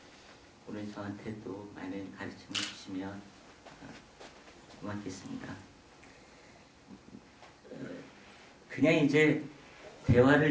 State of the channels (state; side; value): identical; both; correlation 1.00